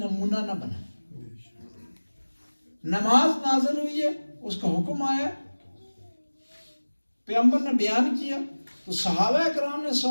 نہ بنائے. نماز نازل ہوئی ہے, اس کا حکم آیا, پیغمبر نے بیان کیا تو صحابہ کرام نے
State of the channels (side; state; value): both; inverted; correlation -1.00